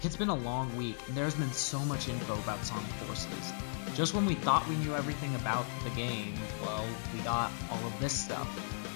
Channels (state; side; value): silent; right; 54 dB below the other